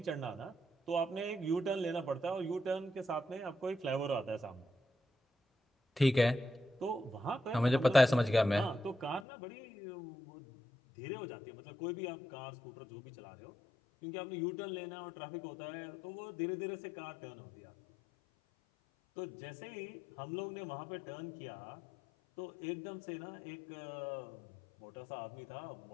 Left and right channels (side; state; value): right; drops out; at 9.2 s